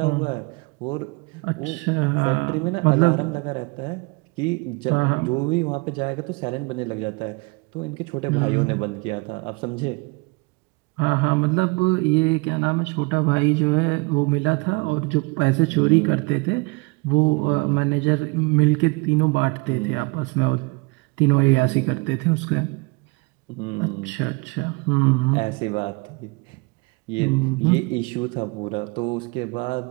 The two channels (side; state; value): left; quieter; 27.3 dB